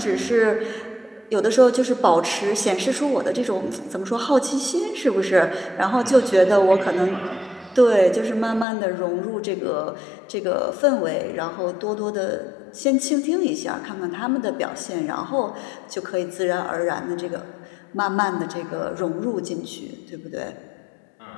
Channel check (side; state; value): right; drops out; at 8.7 s